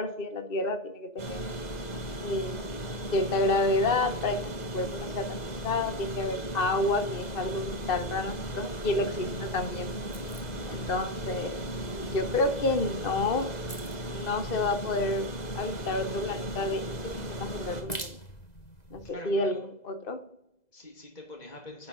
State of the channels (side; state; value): right; late; 2.0 ms